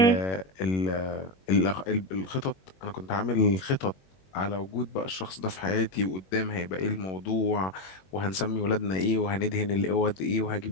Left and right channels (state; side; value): late; right; 21 ms